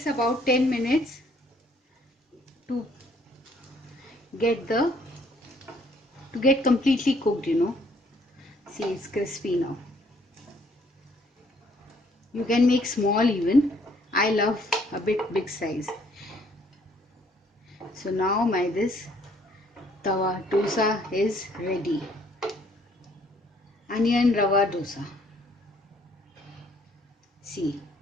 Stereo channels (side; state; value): both; normal; correlation 0.64